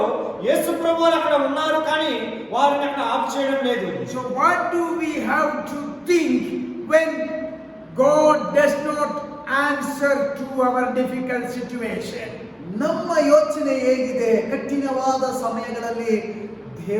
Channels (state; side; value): identical; both; correlation 1.00